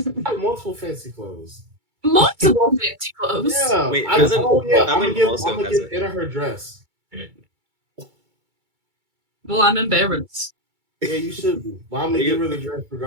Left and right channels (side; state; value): left; late; 2.3 ms